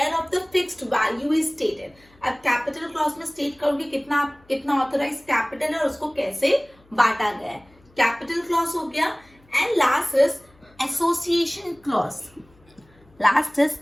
of the fixed value is stated. अब कैपिटल क्लॉज में स्टेट करोगे कितना कितना ऑथोराइज कैपिटल है और उसको कैसे बांटा गया है, कैपिटल क्लॉज हो गया। And last is association clause, last is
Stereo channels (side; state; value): left; noise; hum, 30 dB below the sound